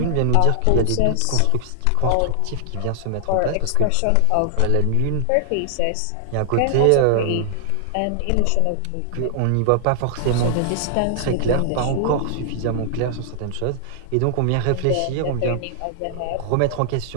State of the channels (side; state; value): both; different; correlation 0.00